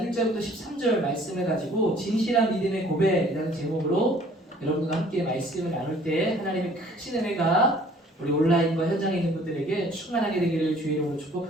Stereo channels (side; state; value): both; normal; correlation 0.55